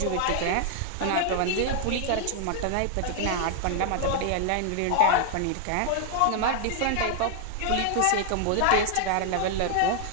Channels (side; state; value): both; different; correlation -0.01